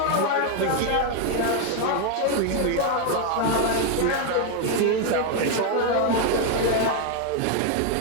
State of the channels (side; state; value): both; different; correlation 0.01